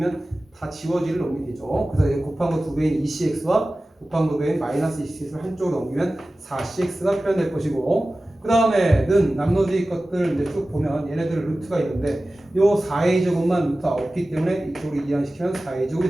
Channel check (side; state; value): both; normal; correlation 0.96